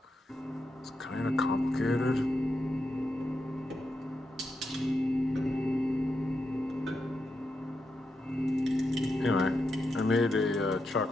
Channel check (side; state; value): both; normal; correlation 0.85